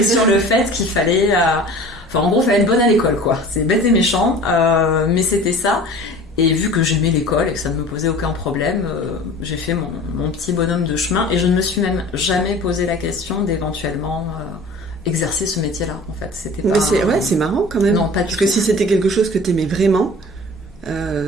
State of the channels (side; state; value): both; normal; correlation 0.42